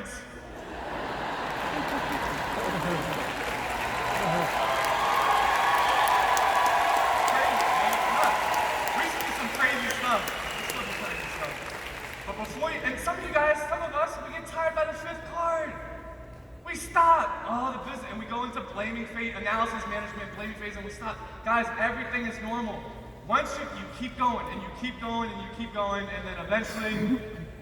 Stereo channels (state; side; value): identical; both; correlation 1.00